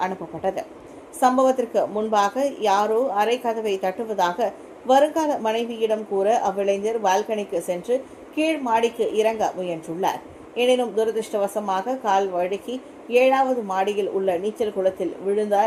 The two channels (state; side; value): identical; both; correlation 1.00